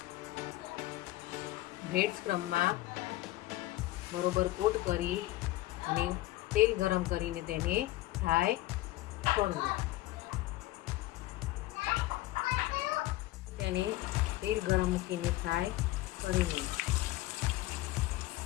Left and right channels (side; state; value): right; quieter; 17.3 dB